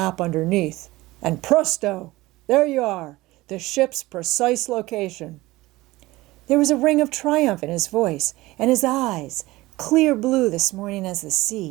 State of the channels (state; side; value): quieter; left; 19.3 dB